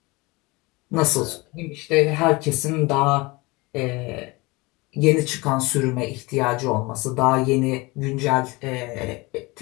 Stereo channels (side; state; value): right; quieter; 24.1 dB